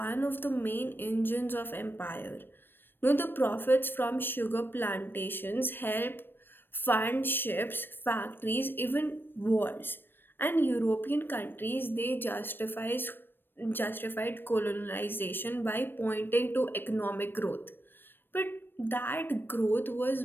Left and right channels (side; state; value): right; late; 0.096 ms